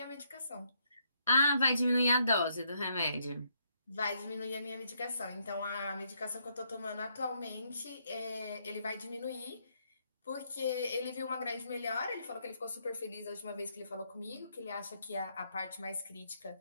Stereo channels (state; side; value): inverted; both; correlation -0.74